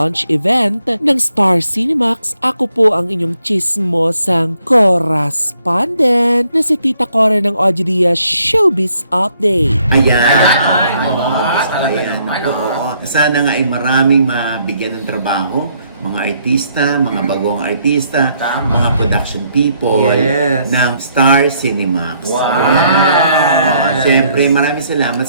event ng Star Cinemax, ako po ang inyong chismosang correspondent na si Tita Cora ng Ojidia Showbiz Update. Ayan. Talaga Ayan. naman. Oo. Sana nga ay maraming mabigyan ng trabaho, mga artista, mga bagong artista, Tama. mga production people Yes. ng Star Cinemax. Wow. Ayan. Siyempre, maraming salamat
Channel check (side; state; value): both; inverted; correlation -0.70